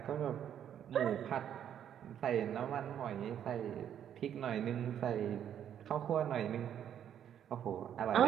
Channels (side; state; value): left; quieter; 9.6 dB